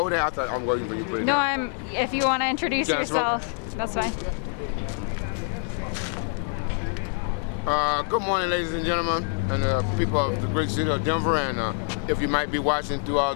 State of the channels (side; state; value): right; silent; 56 dB below the other